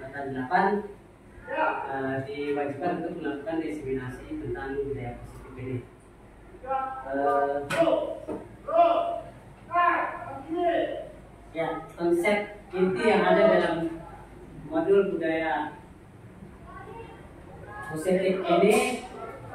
8 diwajibkan untuk melakukan diseminasi tentang budaya positif ini. Ya, konsep inti yang ada dalam modul budaya positif ini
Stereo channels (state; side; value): identical; both; correlation 1.00